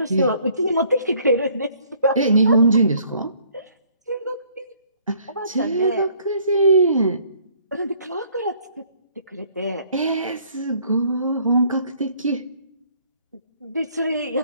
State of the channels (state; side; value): inverted; both; correlation -0.61